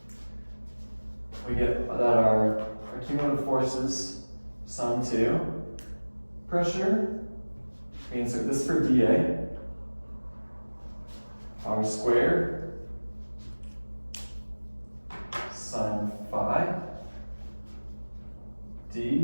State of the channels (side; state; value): both; inverted; correlation -1.00